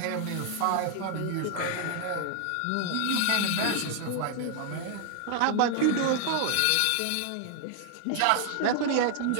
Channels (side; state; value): both; different; correlation 0.00